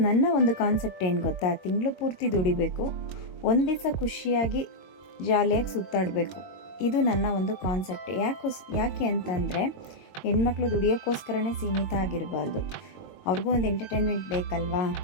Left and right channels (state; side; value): late; right; 22 ms